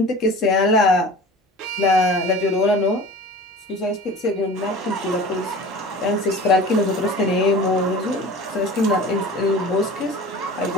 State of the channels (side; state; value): both; normal; correlation 0.39